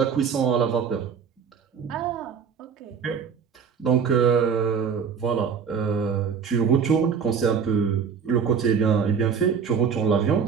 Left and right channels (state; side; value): quieter; left; 6.6 dB